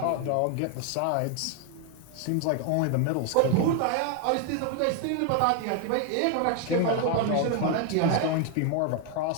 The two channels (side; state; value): both; different; correlation 0.01